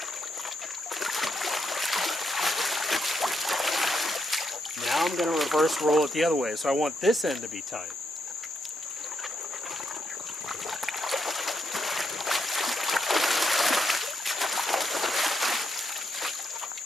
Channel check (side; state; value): both; normal; correlation 0.80